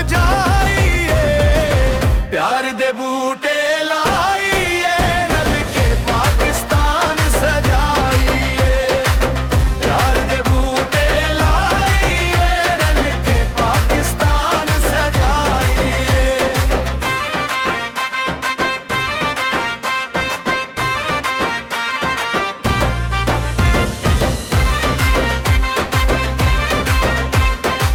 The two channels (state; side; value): identical; both; correlation 1.00